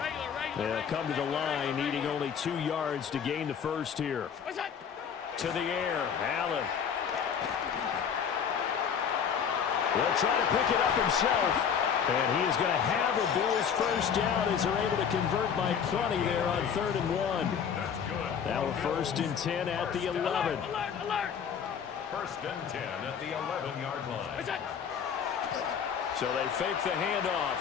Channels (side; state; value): right; quieter; 7.4 dB